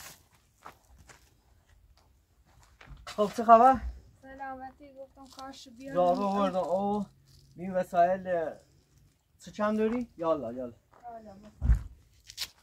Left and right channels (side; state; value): both; identical; correlation 1.00